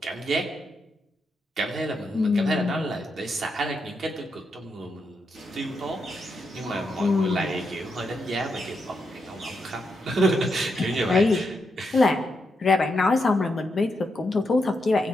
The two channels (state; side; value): normal; both; correlation 0.83